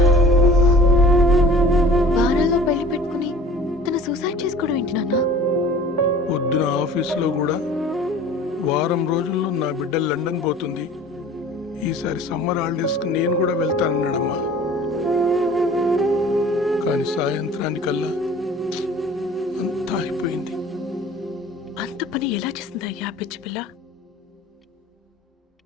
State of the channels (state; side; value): normal; both; correlation 0.45